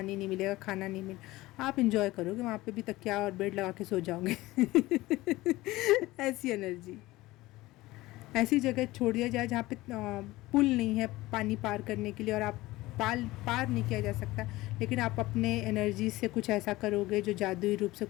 नहीं मिलेगा, खाना नहीं मिलेगा, आप इंजॉय करोगे, वहाँ पे भी तकिया और बेड लगा के सो जाओगे। ऐसी एनर्जी। ऐसी जगह छोड़ दिया जाए जहाँ पे पुल नहीं है पानी पार करने के लिए, और आप पार नहीं किया जा सकता, लेकिन आप अपने एनर्जी से कुछ ऐसा करोगे जो जादुई रूप से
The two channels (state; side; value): quieter; right; 18.8 dB